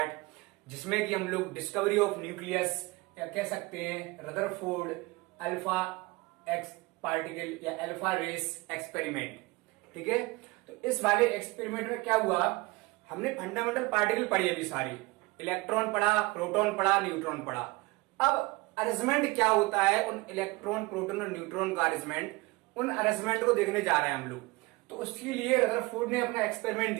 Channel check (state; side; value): quieter; left; 23.5 dB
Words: जिसमें कि हम लोग डिस्कवरी ऑफ न्यूक्लियस या कह सकते हैं रदरफोर्ड अल्फा एक्स पार्टिकल या अल्फा रेस एक्सपेरिमेंट। ठीक है, तो इस वाले एक्सपेरिमेंट में क्या हुआ, हमने फंडामेंटल पार्टिकल पढ़ी अभी सारी, इलेक्ट्रॉन पढ़ा, प्रोटॉन पढ़ा, न्यूट्रॉन पढ़ा। अब अरेंजमेंट क्या होता है उन इलेक्ट्रॉन, प्रोटॉन और न्यूट्रॉन का अरेंजमेंट, उन अरेंजमेंट को देखने जा रहे हैं हम लोग। तो उसके लिए रदरफोर्ड ने अपना एक्सपेरिमेंट